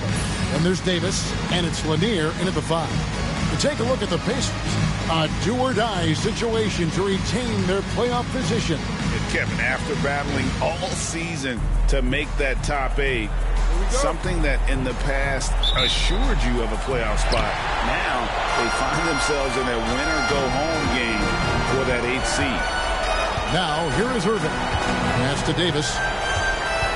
Then there's Davis. And it's Lanier in at the five. To take a look at the Pacers. A do-or-die situation to retain their playoff position. Kevin, after battling all season to make that top 8, something that in the past assured you of a playoff spot, now they find themselves in a win-or-go-home game for that 8th seed. Now, here is Irving. Pass to Davis.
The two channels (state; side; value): identical; both; correlation 1.00